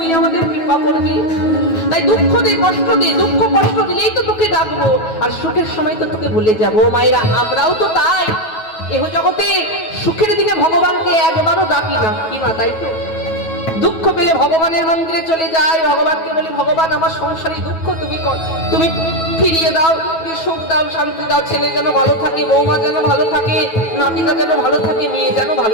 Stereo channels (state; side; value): late; right; 9.2 ms